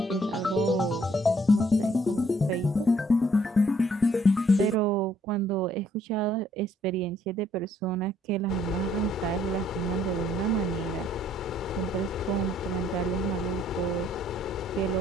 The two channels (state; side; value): normal; both; correlation 0.66